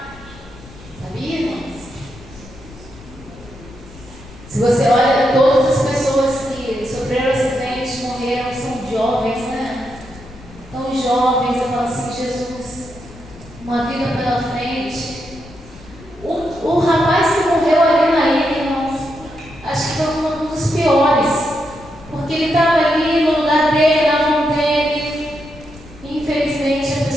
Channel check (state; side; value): noise; left; rumble, 20 dB below the sound